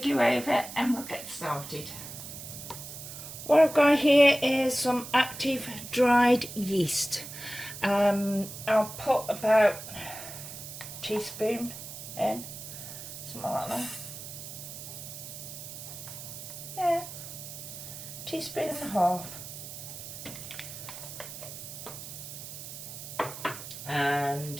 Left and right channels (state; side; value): noise; right; hiss, 11 dB below the sound